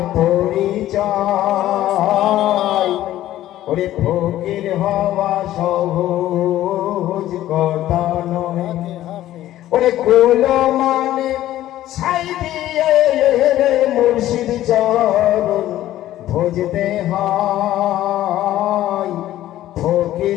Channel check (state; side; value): quieter; right; 13.8 dB